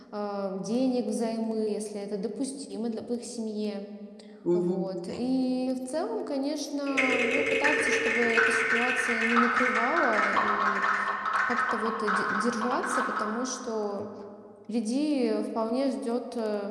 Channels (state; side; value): identical; both; correlation 1.00